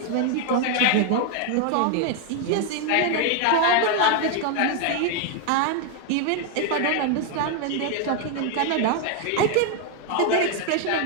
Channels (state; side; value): different; both; correlation 0.00